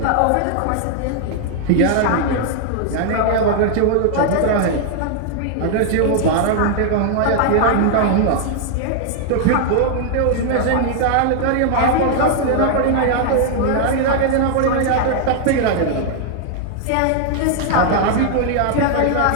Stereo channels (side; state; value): both; different; correlation 0.00